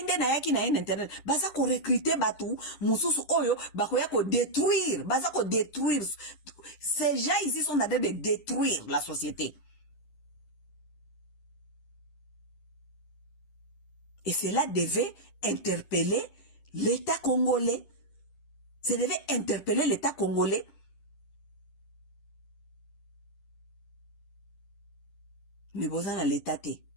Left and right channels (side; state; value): right; late; 9.9 ms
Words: nde na yaki na ye na internet. Baza ko recruter batu. Mususu oyo. Bako ya ko détruire. Baza ko détruire. Ces gens ici sont en train de détruire la société. Et cela devait interpeller l'État congolais. Ça devait interpeller l'État congolais. Mais bozana l'État te.